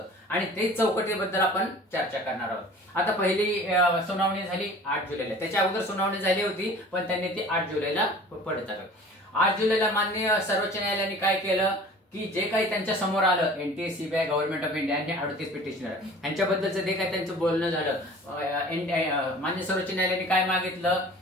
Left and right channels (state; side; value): normal; both; correlation 0.45